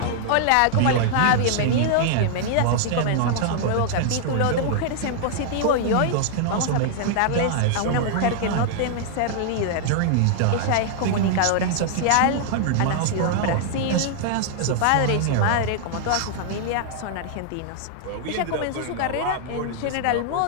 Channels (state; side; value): different; both; correlation -0.01